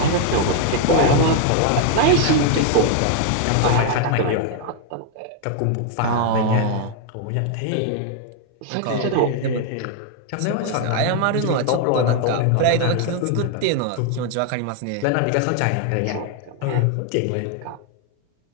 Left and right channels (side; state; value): both; different; correlation 0.00